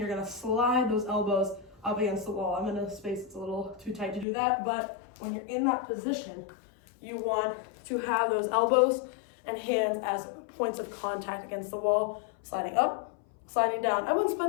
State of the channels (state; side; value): drops out; right; at 4.2 s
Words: gonna slide those elbows up against the wall. I'm in a space that's a little too tight to do that, but when you're in that position, you want to have those elbows and hands as points of contact against the wall, sliding up, sliding down. I wouldn't